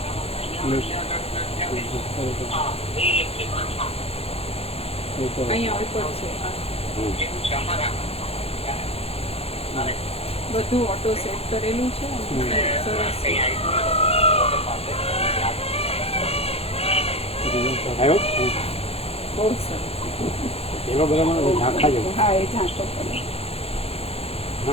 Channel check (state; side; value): late; right; 0.29 ms